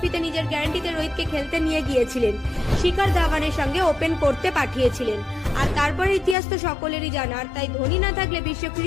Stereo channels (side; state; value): right; drops out; at 6.4 s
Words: নিজের গ্যারান্টিতে রোহিতকে খেলতে নিয়ে গিয়েছিলেন, শিখর ধাওয়ানের সঙ্গে ওপেন করতে পাঠিয়েছিলেন। আর তারপরে ইতিহাস তো সকলেরই জানা, আর তাই ধোনি না থাকলে বিশ্ব